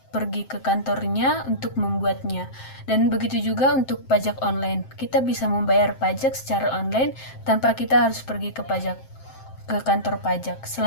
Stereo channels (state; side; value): late; right; 7.6 ms